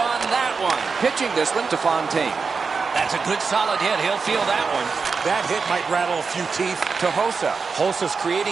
that one. Pitching this one to Fontaine. That's a good solid hit. He'll feel that one. That hit might rattle a few teeth. To Hossa. Hossa's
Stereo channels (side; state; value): left; quieter; 5.0 dB